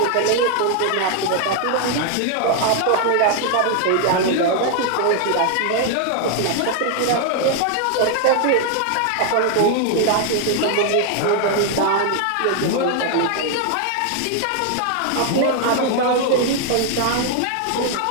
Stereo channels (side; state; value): both; different; correlation 0.00